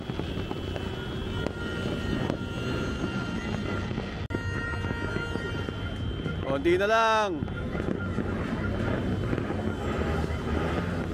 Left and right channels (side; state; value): both; identical; correlation 1.00